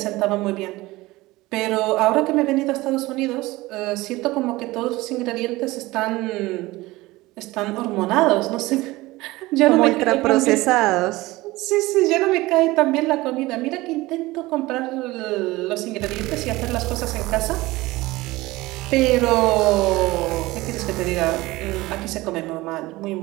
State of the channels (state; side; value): quieter; left; 19.7 dB